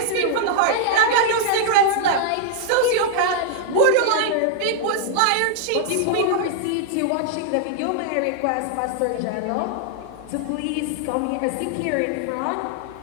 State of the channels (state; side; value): different; both; correlation -0.01